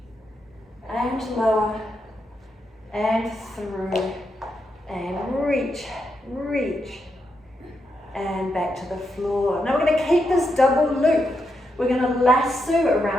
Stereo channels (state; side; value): normal; both; correlation 0.83